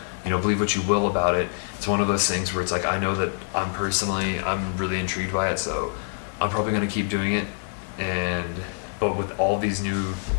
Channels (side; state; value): right; silent; 62 dB below the other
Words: You know, believe what you will about it. It's one of those things where it's like, I know that I'm really intrigued by it, so I'm probably going to keep doing it. But with all these new,